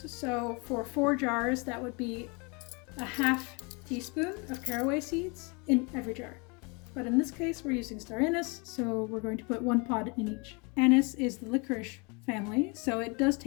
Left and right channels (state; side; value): quieter; right; 30.9 dB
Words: So for 4 jars, that would be 1/2 teaspoon of caraway seeds in every jar. But in this case, we're using star anise, so we're going to put 1 pod in each. Anise is the licorice family, so it does